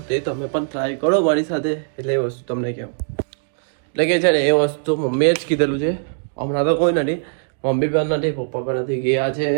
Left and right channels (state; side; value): silent; left; digital silence